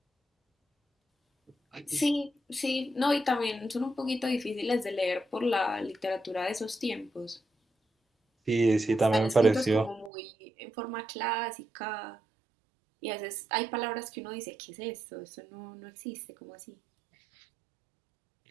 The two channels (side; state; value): left; drops out; at 10.1 s